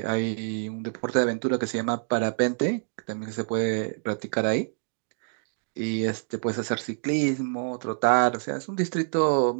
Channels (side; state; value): left; silent; digital silence